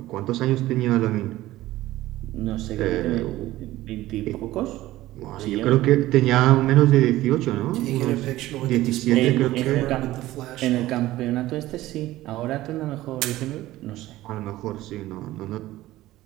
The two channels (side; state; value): left; quieter; 16.2 dB